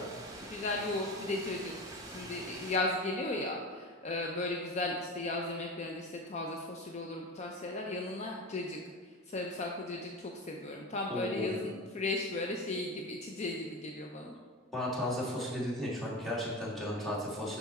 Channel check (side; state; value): both; normal; correlation 0.27